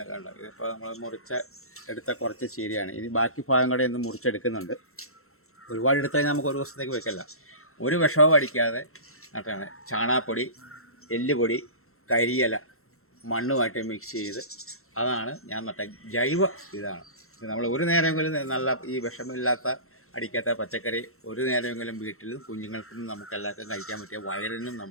കണ്ടത് ഇതിപ്പോൾ നമ്മൾ എടുത്ത കുറച്ച് ചീരയാണ്. ഇനി ബാക്കി ഭാഗം കൂടെ ഇന്ന് മുറിച്ചെടുക്കുന്നുണ്ട്. ഒരുപാട് എടുത്തു കഴിഞ്ഞാൽ നമുക്ക് ഒരു ദിവസത്തേക്ക് വെക്കല്ല. ഒരു വിഷവും അടിക്കാതെ നട്ടാണ്. ചാണകപ്പൊടി, എല്ലുപൊടി, കരിയില മണ്ണുമായിട്ട് മിക്സ് ചെയ്ത് അതാണ് ഞാൻ നട്ട ജൈവ ഇതാണ്. നമ്മൾ ഒരു നേരമെങ്കിലും നല്ല ഈ വിഷമില്ലാത്ത അടിക്കാത്ത പച്ചക്കറി ഒരു നേരമെങ്കിലും വീട്ടിലും കുഞ്ഞുങ്ങൾക്കും നമുക്കെല്ലാവർക്കും കഴിക്കാൻ പറ്റിയ വയറിനും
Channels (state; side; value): late; right; 0.63 ms